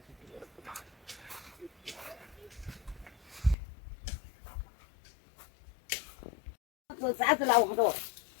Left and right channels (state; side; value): drops out; right; at 3.6 s